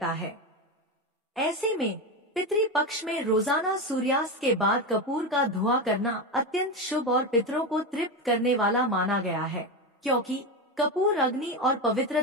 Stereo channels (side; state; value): both; normal; correlation 0.15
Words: है। ऐसे में पितृ पक्ष में रोजाना सूर्यास्त के बाद कपूर का धुआं करना अत्यंत शुभ और पितरों को तृप्त करने वाला माना गया है, क्योंकि कपूर अग्नि और